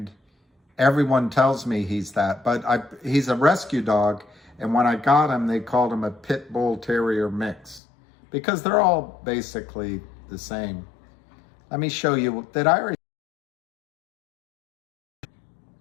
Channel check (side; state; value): right; drops out; at 7.8 s